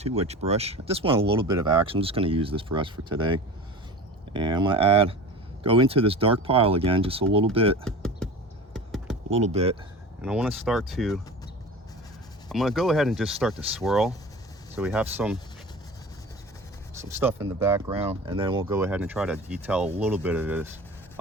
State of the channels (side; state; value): both; normal; correlation 0.35